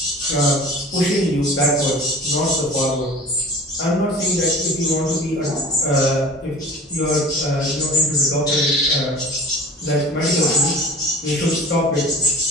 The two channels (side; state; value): both; normal; correlation 0.41